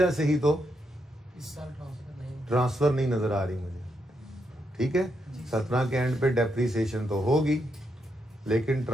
से ही तो इस साल ट्रांसफर नहीं नजर आ रही मुझे, ठीक है। 17 के एंड पे डेप्रीसिएशन तो होगी लेकिन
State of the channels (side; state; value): both; normal; correlation 0.81